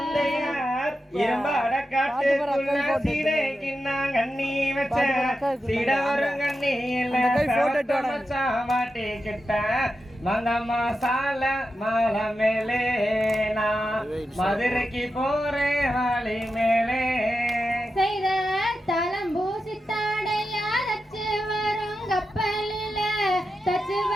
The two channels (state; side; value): normal; both; correlation 0.89